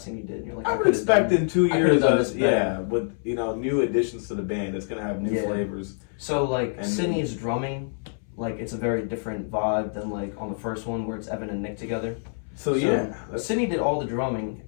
thing you did, and you're like, I would could've expect done- in 2 I could've years, done this better. yeah, with new additions to the band, it's gonna have new Yeah. flavors. So like And- Sydney's drumming, like it's a very different vibe than like on the first one where it's Evan and Nick together. So yeah, that's, Sydney did all the drumming,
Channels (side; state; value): right; silent; 61 dB below the other